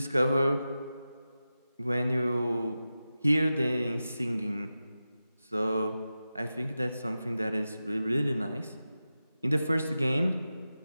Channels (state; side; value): inverted; both; correlation -0.93